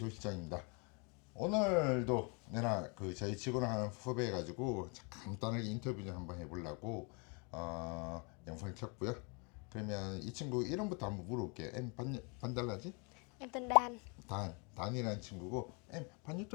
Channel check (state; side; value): quieter; right; 33.3 dB